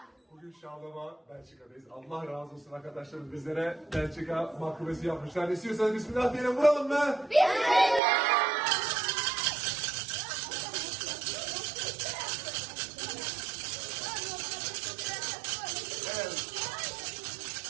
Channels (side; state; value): left; drops out; at 8.0 s